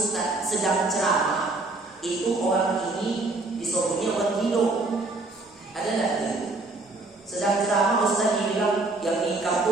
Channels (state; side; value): quieter; left; 3.2 dB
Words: sedang ceramah, itu orang ini disebutnya orang gila. Ada tak itu? Sedang ceramah ustaz dibilang yang nikam